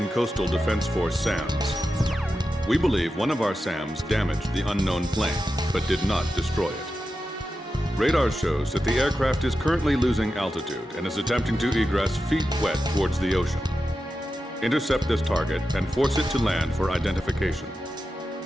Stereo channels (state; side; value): normal; both; correlation 0.91